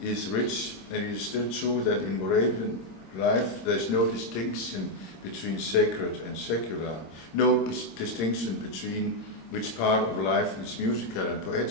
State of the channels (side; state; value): right; late; 26 ms